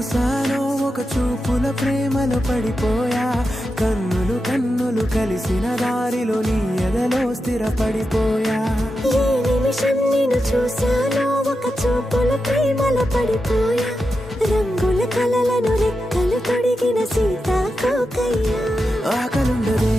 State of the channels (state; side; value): normal; both; correlation 0.89